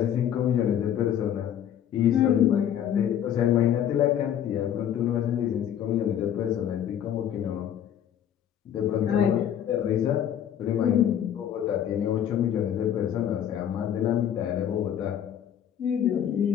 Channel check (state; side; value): quieter; right; 9.9 dB